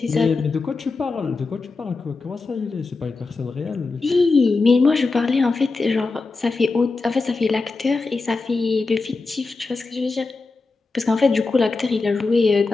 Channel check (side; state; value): right; quieter; 3.9 dB